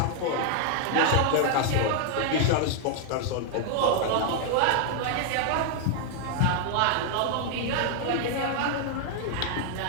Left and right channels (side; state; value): both; different; correlation 0.00